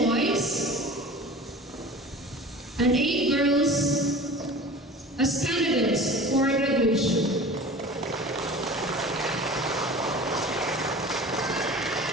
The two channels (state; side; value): normal; both; correlation 0.39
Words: boys, and 8 girls as candidates for graduation.